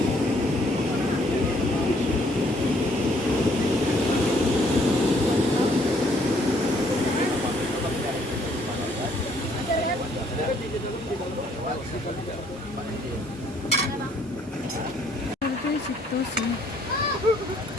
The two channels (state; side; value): normal; both; correlation 0.65